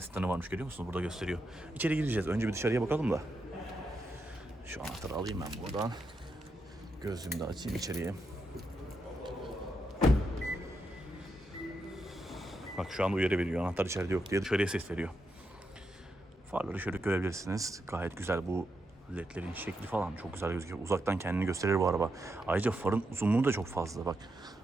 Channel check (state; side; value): normal; both; correlation 0.84